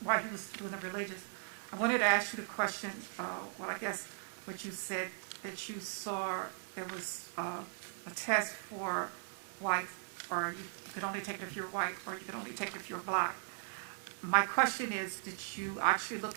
while you was doing the religious, I wanted to ask you the question, I guess what you said, that you saw there was a test for white, or you could only take it if you're white, or you could only take it if you're black. My question is, did you actually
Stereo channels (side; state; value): left; silent; 52 dB below the other